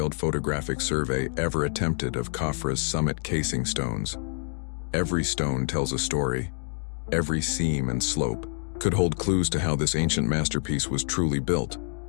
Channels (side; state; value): right; silent; digital silence